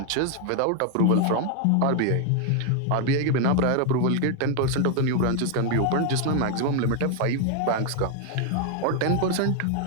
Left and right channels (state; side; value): different; both; correlation 0.00